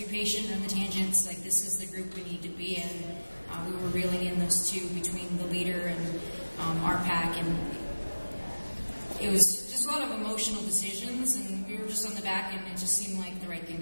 patient on the tangents. Like, this is the group we need to be in. We were reeling in those two between the leader and our pack, and it was just a lot of emotional decisions, and we were just on the back, and it just seemed like the right thing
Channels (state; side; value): inverted; both; correlation -1.00